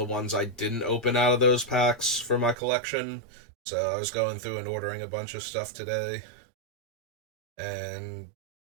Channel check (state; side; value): drops out; left; at 2.6 s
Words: ones I didn't open out of those packs for my collection. So I was going through and ordering a bunch of stuff today. And